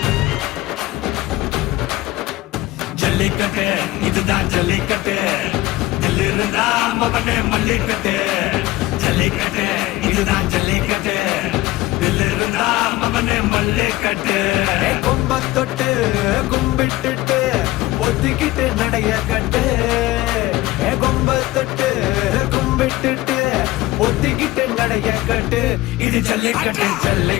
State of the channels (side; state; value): right; quieter; 18.1 dB